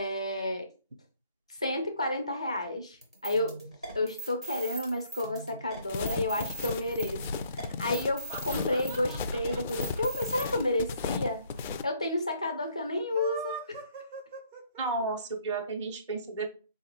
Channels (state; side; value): inverted; both; correlation -0.63